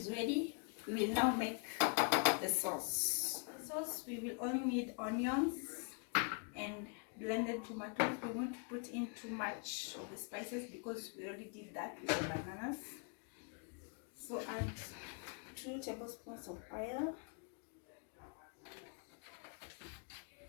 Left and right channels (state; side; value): quieter; right; 39.0 dB